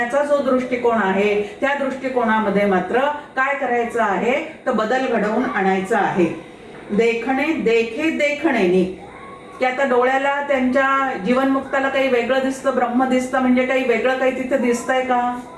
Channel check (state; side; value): identical; both; correlation 1.00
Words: जो दृष्टिकोन आहे त्या दृष्टिकोनामध्ये मात्र काय करायचं आहे तर बदल घडवून आणायचा आहे. देखणे देखे देखणेनी, की आता डोळ्याला त्यांच्या जीवनमुक्ताला काही वेगळं दिसतं, ब्रह्म दिसतं, म्हणजे काही वेगळं काही तिथे दिसतंय का?